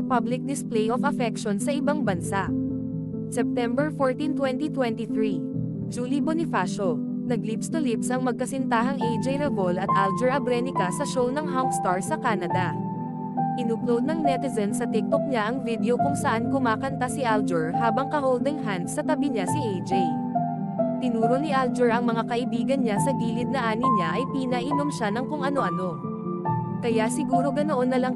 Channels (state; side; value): identical; both; correlation 1.00